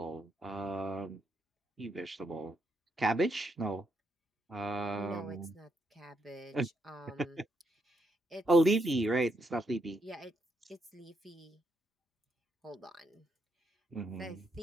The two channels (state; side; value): normal; both; correlation 0.78